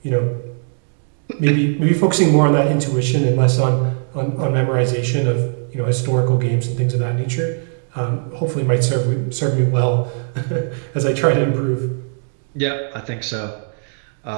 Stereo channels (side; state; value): left; silent; 66 dB below the other